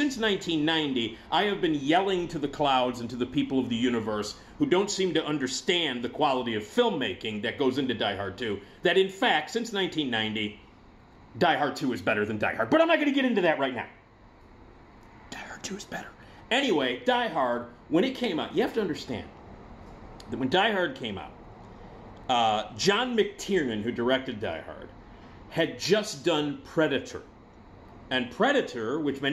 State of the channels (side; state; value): both; identical; correlation 1.00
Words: 1990, I have been yelling to the clouds and to the people of the universe who don't seem to understand the quality of filmmaking that goes into Die Hard 2, that in fact, since 1990, Die Hard 2 is better than Die Hard. But I'm not going to get into that right now. Die Hard 2 is better. Anyway, Die Hard, when it came out, you have to understand that when Die Hard came out, John McTiernan, who directed Die Hard, had just done Predator. And Predator, which